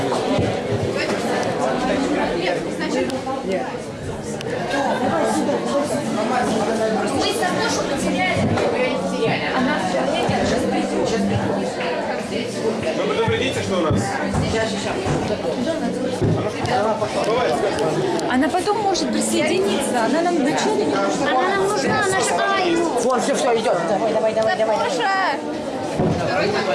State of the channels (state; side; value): identical; both; correlation 1.00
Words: Сатошу потеряли. Она в туалете, сейчас придет. Вы предупредите, что у нас? Она потом может присоединиться. Она нам вначале не нужна. Она нам нужна, она же Аю. Вот, все, идет. Давай.